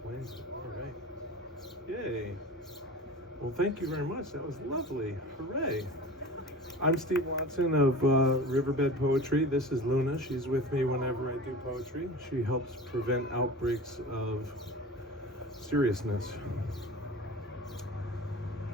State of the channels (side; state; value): both; normal; correlation 0.36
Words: it. All right. Yay. Well, thank you very much. That was lovely. Hooray. I'm Steve Watson of Riverbed Poetry. This is Luna. She's with me whenever I do poetry. She helps prevent outbreaks of seriousness.